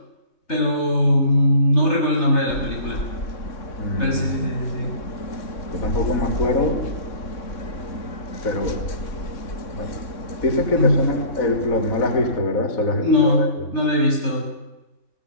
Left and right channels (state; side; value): late; right; 3.3 ms